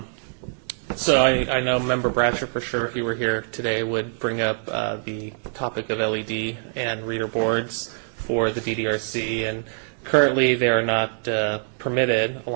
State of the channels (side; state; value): left; silent; digital silence